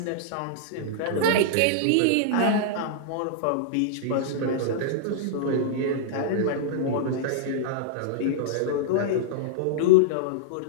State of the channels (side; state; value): both; different; correlation -0.02